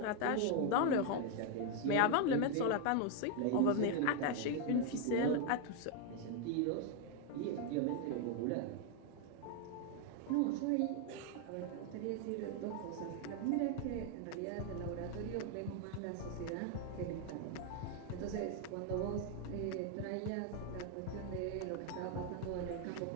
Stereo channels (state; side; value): different; both; correlation 0.01